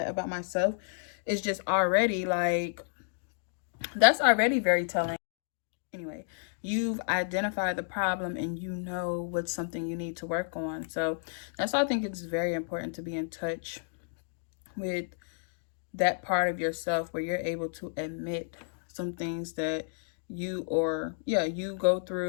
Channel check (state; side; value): silent; right; digital silence